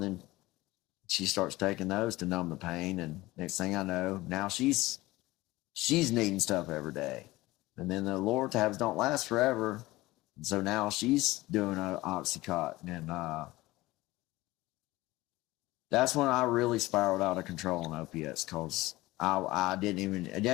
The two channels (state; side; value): quieter; right; 19.1 dB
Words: she starts taking those to numb the pain, and next thing I know, now she's needing stuff every day. And then the Loratabs don't last forever. And so now she's doing an Oxycontin. And that's when I really spiraled out of control on opiates, because I didn't